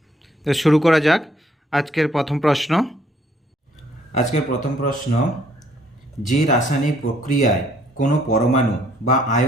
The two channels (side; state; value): both; normal; correlation 0.65